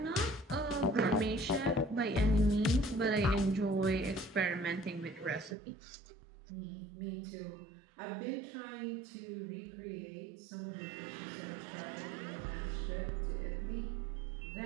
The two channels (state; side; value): drops out; left; at 5.6 s